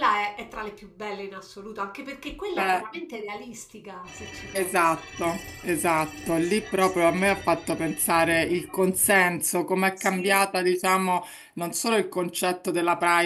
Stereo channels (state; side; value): identical; both; correlation 1.00